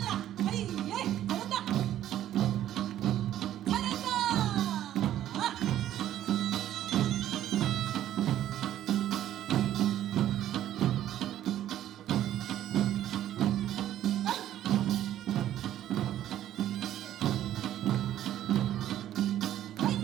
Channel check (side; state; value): left; quieter; 12.1 dB